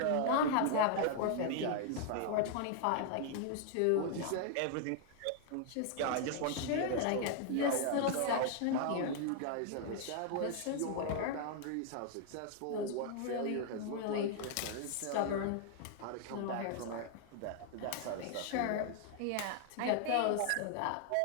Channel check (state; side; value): different; both; correlation 0.00